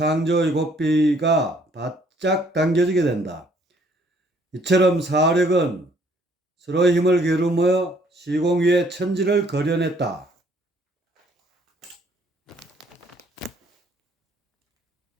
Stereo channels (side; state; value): both; normal; correlation 0.62